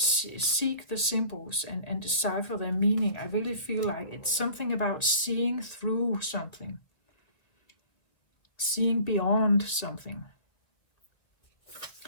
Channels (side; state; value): right; late; 1.9 ms